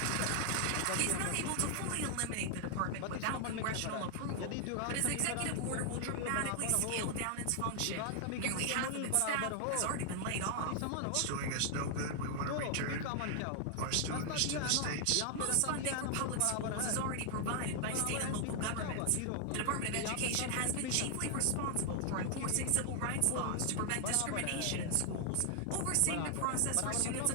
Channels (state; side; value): different; both; correlation 0.00